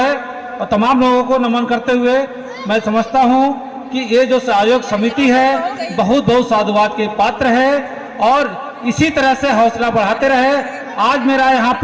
और तमाम लोगों को नमन करते हुए मैं समझता हूं कि ये जो आयोजक समिति है बहुत बहुत साधुवाद के पात्र है, और इसी तरह से हौसला बढ़ाते रहे। आज मेरा यहाँ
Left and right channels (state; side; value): identical; both; correlation 1.00